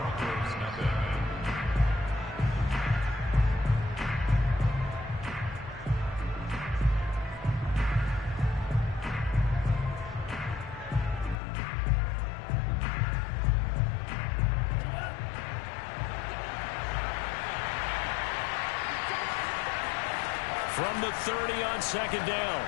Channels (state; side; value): drops out; right; at 11.4 s